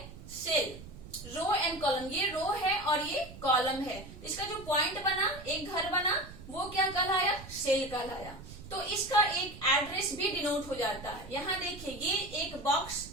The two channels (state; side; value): noise; right; rumble, 15 dB below the sound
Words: सेल, रो एंड कॉलम, ये रो है और ये कॉलम है। इसका जो पॉइंट बना, एक घर बना, वो क्या कहलाया, सेल कहलाया। तो इसका एक एड्रेस भी डिनोट हो जाता है। यहाँ देखिए ये एक बॉक्स